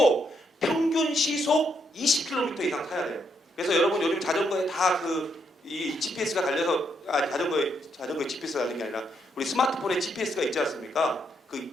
평균 시속 20km 이상 타야 돼요. 그래서 여러분 요즘 자전거에 다 이 GPS가 달려서 자전거에 GPS가 달린 게 아니라 우리 스마트폰에 GPS가 있지 않습니까?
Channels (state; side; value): normal; both; correlation 0.76